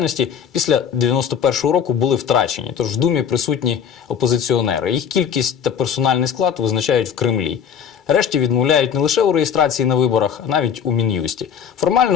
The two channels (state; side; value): quieter; right; 7.8 dB